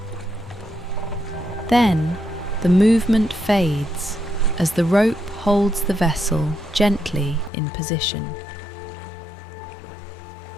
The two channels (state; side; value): drops out; right; at 7.5 s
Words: Then the movement fades as the rope holds the vessel gently in position.